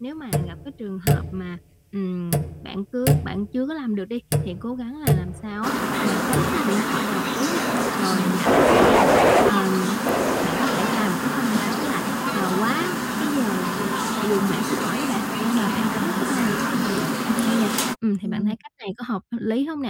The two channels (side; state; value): both; identical; correlation 1.00